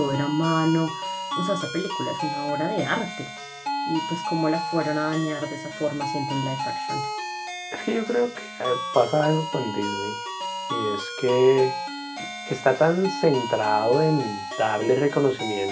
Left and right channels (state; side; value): identical; both; correlation 1.00